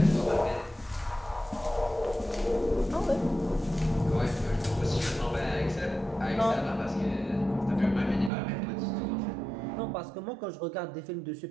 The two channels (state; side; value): drops out; left; at 8.3 s